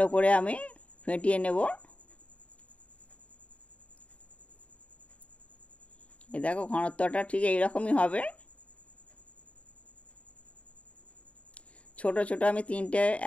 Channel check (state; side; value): late; right; 0.065 ms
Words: করে আমি ফেটিয়ে নেব। এই দেখো ঘনত্বটা ঠিক এইরকমই হবে। ছোট ছোট আমি 3টে